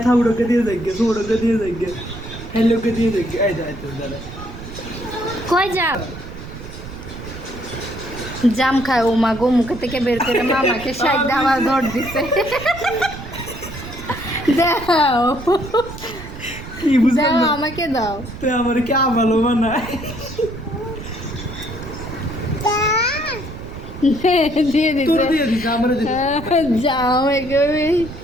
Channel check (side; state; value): right; noise; rumble, 12 dB below the sound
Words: থাউড়োকে দিয়ে দেখবে সোড়োকে দিয়ে দেখবে হেলোকে দিয়ে দেখবে এই যায় তো দাদা কই যাও? জাম খায় ও মা গো, মুখে থেকে বের করে মামাকে সাইড আবার ধর দিছে। দাও কি বুঝলাম দাও, না আমাকে দাও। তুই আমার কি ভালো বানায় দিয়ে তোর দিছে দিয়ে দিস আমার দিয়ে জাম, একেবারে